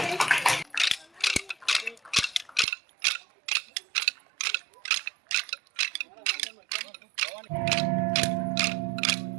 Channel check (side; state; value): left; drops out; at 2.7 s